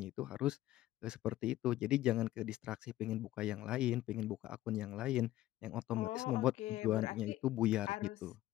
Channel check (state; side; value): quieter; right; 14.9 dB